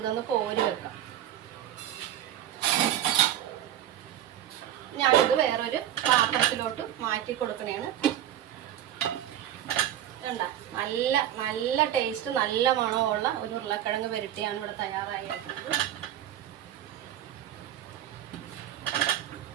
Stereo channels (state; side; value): quieter; left; 11.5 dB